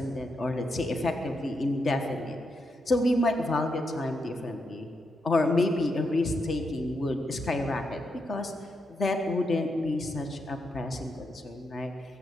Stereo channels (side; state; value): both; normal; correlation 0.82